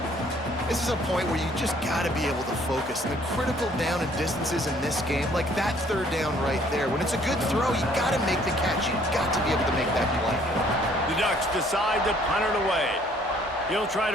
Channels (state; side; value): normal; both; correlation 0.60